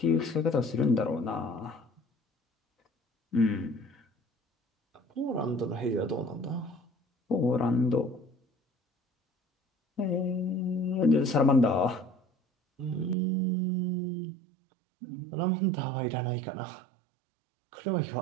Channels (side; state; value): left; drops out; at 13.2 s